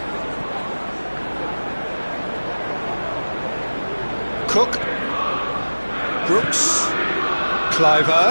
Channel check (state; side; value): inverted; both; correlation -1.00